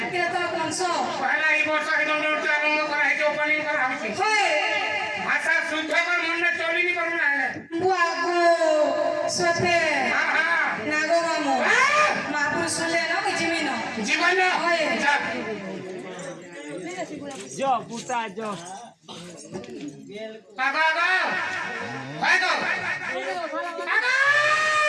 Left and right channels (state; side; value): identical; both; correlation 1.00